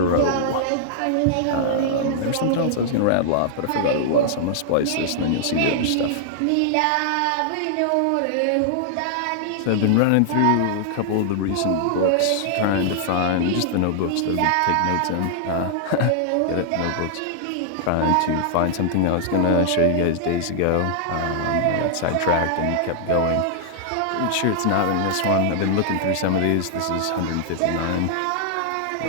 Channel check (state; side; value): different; both; correlation -0.01